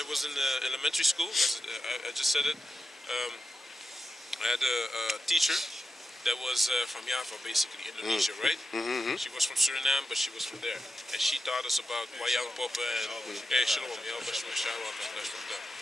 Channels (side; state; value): both; normal; correlation 0.89